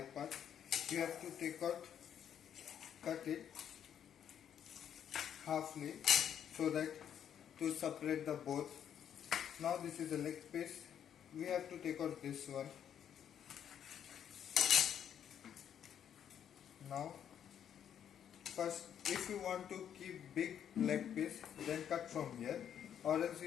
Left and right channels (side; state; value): right; quieter; 9.2 dB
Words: part. You have to cut it halfly so that to separate the both. Now this is a leg piece. We have to take out this one. Now first, if you want to keep big leg piece, then cut from here, or else